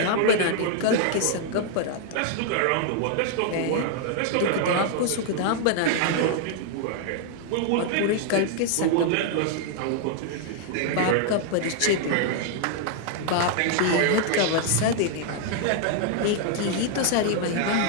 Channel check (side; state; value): both; different; correlation 0.00